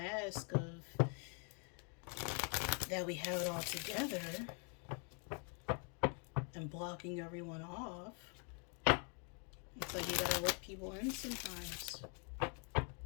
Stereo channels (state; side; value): quieter; right; 39.1 dB